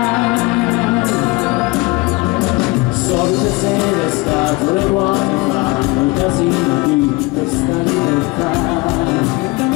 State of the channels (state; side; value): quieter; right; 23.9 dB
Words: Solite sere scatole vuote fanno il casino di questa libertà.